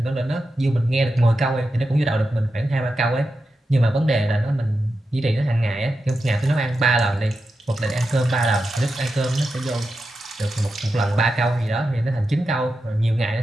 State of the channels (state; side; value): normal; both; correlation 0.89